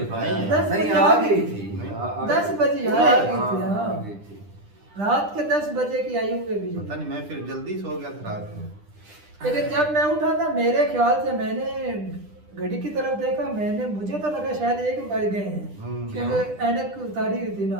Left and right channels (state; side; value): late; left; 10 ms